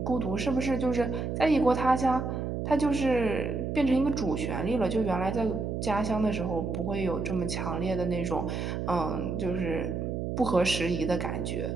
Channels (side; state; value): right; noise; hum, 3 dB below the sound